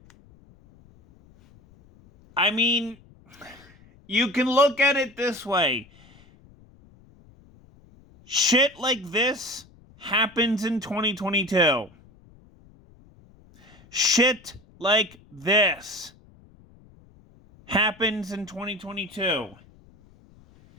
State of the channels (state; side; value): noise; left; rumble, 27 dB below the sound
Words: I mean, you can look at it this way. Shit like this happens in 2022. Shit like this happens in 2022.